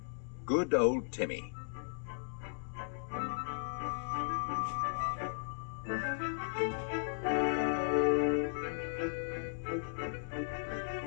Good Old Timmy.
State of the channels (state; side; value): silent; right; digital silence